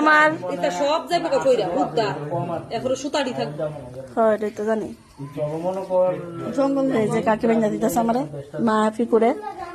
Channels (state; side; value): identical; both; correlation 1.00